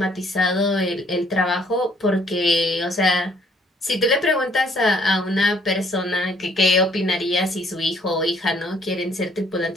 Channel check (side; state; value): both; normal; correlation 0.63